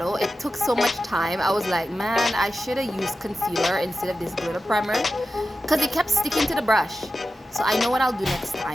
it took so much time. I was like, man, I should have used concealer instead of this glitter primer because it kept sticking to the brush. So I know what I'll do next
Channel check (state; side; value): normal; both; correlation 0.92